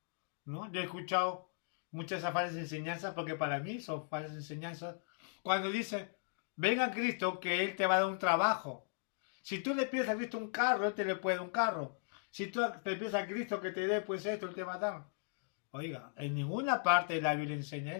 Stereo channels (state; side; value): silent; right; digital silence